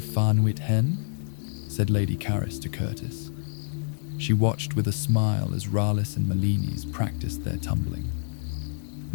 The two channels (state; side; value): silent; right; digital silence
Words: Farnwit Hen, said Lady Caris to Curtis. She watched with a smile as Ralis and Melinis practiced their tumbling.